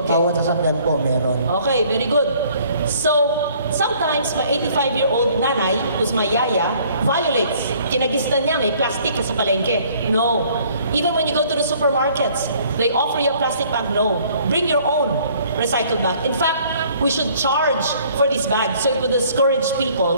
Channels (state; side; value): inverted; both; correlation -0.58